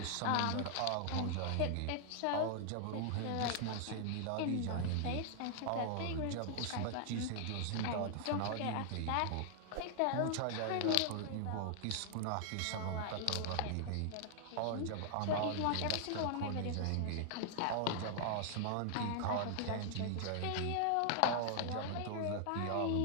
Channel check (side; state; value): both; different; correlation 0.00